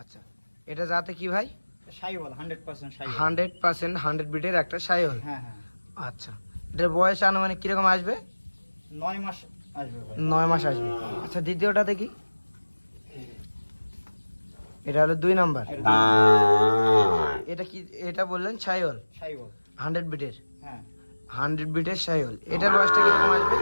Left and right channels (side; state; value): both; inverted; correlation -1.00